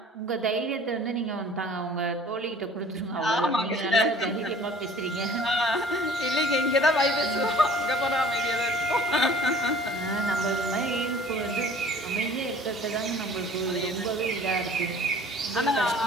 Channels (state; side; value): normal; both; correlation 0.49